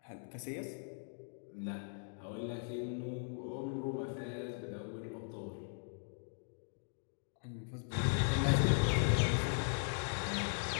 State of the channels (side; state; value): right; silent; digital silence